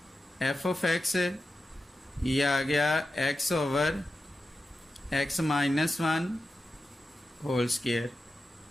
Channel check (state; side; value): normal; both; correlation 0.92